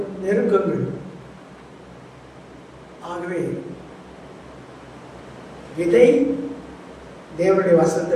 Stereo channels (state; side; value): identical; both; correlation 1.00